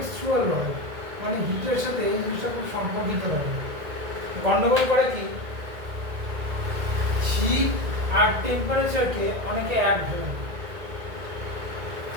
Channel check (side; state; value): left; late; 1.8 ms